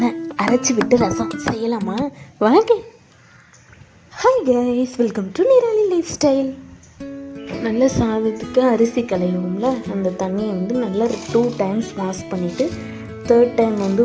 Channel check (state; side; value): identical; both; correlation 1.00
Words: அரைச்சி விட்டு ரசம் செய்யலாமா? வாங்க. Hi guys, welcome to Nirali life style. நல்ல சாதத்துக்கு அரிசி களையும்ல, அந்த தண்ணியை நல்லா 2 times வாஷ் பண்ணிவிட்டு 3rd time